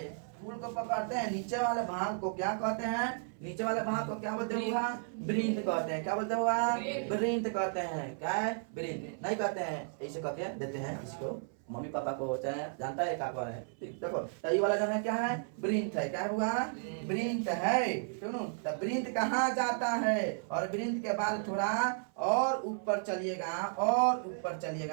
फूल को पकड़ते हैं, नीचे वाले भाग को क्या कहते हैं, नीचे वाले भाग को क्या बोलते हैं, वृंत कहते हैं, क्या बोलते हैं वृंत कहते हैं, क्या है वृंत नहीं कहते हैं, ऐसे कहते हैं देते हैं इसको मम्मी पापा को होता है, जानता है क्या कौन है, देखो तो ये वाला जो है क्या है वृंत है, क्या हुआ वृंत है, सुनो तो वृंत कहाँ जाता है, और वृंत के बाद थोड़ा और ऊपर चलिएगा, और ऊपर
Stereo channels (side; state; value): left; silent; 55 dB below the other